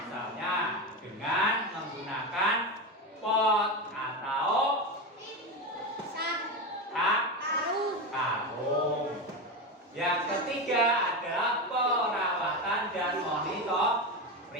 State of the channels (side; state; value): both; normal; correlation 0.17